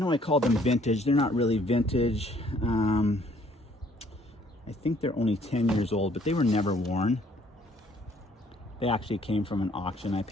I called them vintage. They're not really vintage. I think they're only 10 years old, but they were never worn. They actually came from an auction. I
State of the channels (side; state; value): both; normal; correlation 0.62